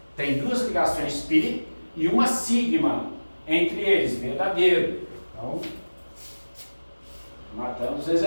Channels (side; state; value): both; inverted; correlation -1.00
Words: tem 2 ligações π e uma sigma entre eles, verdadeiro. Então, matamos o